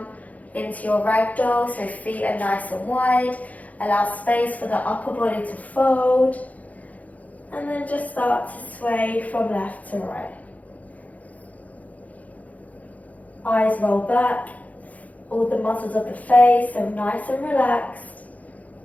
into your ragdoll, so feet are nice and wide. Allow space for the upper body to fold. And then just start to sway from left to right. Eyes roll back. all the muscles of the face, so nice and relaxed.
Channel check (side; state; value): right; late; 0.073 ms